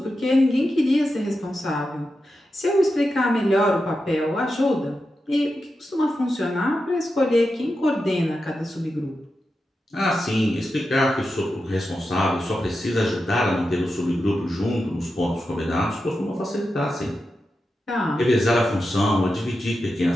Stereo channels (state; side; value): normal; both; correlation 0.89